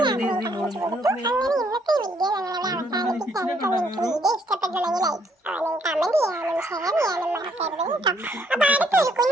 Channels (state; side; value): normal; both; correlation 0.69